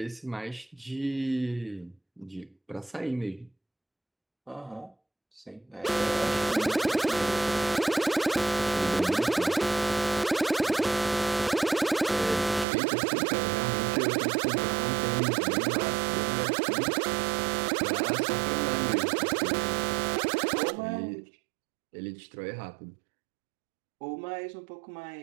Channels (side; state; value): left; drops out; at 12.7 s